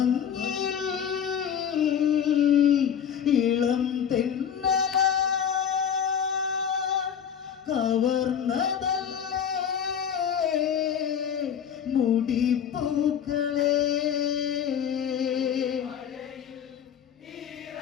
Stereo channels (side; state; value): right; quieter; 8.4 dB